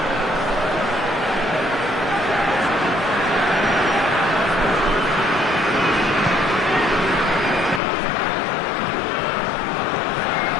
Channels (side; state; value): right; drops out; at 7.8 s